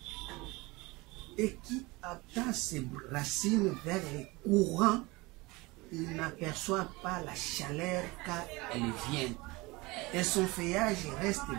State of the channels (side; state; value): left; quieter; 23.2 dB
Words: Et qui attend ses racines vers les courants, il n'aperçoit pas la chaleur car elle vient. Et son feuillage reste